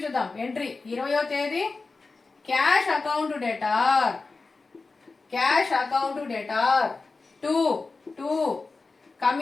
చూద్దాం. ఎంట్రీ 20వ తేదీ cash account debtor. Cash account debtor 2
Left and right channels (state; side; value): quieter; right; 3.9 dB